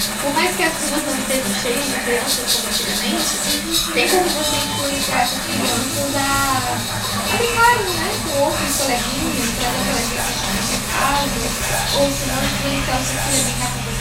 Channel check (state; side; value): identical; both; correlation 1.00